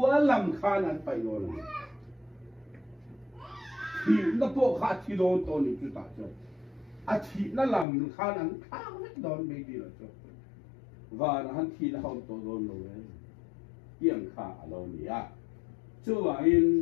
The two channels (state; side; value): drops out; right; at 7.9 s